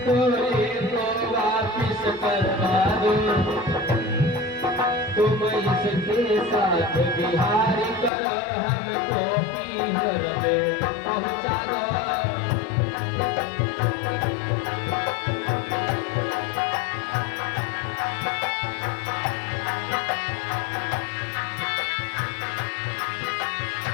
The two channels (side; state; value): right; drops out; at 8.1 s